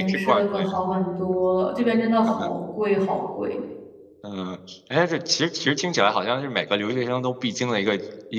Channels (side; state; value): both; identical; correlation 1.00